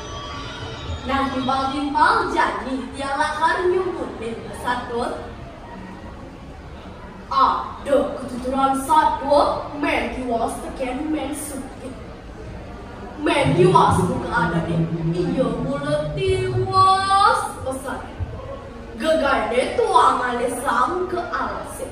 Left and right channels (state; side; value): identical; both; correlation 1.00